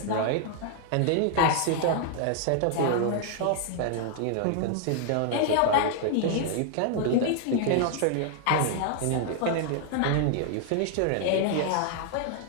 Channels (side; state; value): both; different; correlation 0.00